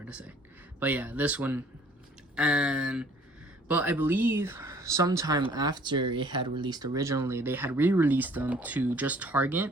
to say, but yeah, this one. But I believe sometime after it had released originally, they had re-released them to just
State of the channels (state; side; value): normal; both; correlation 0.56